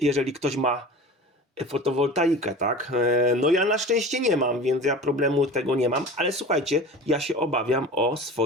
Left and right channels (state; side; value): normal; both; correlation 0.37